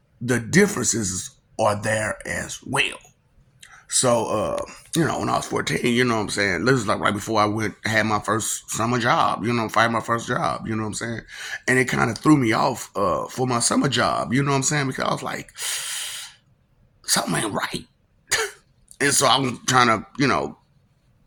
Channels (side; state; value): both; identical; correlation 1.00